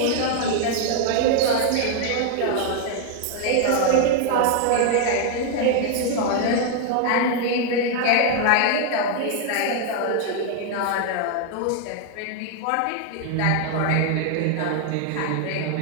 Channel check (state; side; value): different; both; correlation 0.00